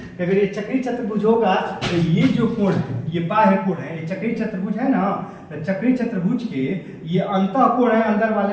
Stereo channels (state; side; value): identical; both; correlation 1.00